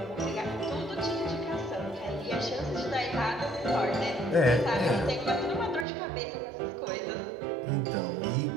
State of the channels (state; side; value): drops out; left; at 5.9 s